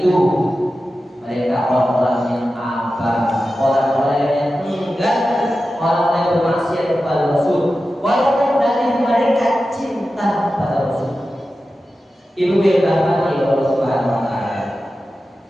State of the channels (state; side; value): normal; both; correlation 0.93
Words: mereka orang-orang yang abah, orang-orang yang enggan, orang-orang yang bermaksiat kepada Rasul, walaupun dari mereka cinta kepada Rasul. Ibu yang dirahmati oleh Allah Subhanahu wa taala,